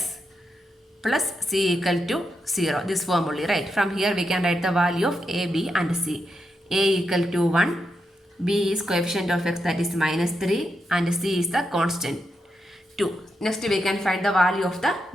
plus c equal to 0. This form only, right? From here we can write the value of a, b and c. A equal to 1, b is coefficient of x, that is minus 3, and c is the constant 2. Next we can find the value of the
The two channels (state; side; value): normal; both; correlation 0.85